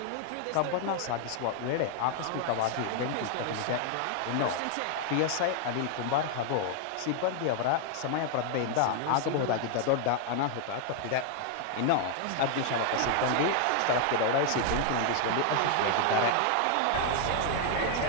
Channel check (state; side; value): different; both; correlation 0.00